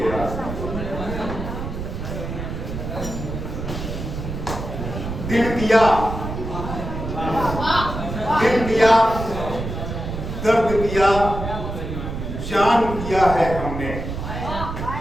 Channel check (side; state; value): right; noise; rumble, 6 dB below the sound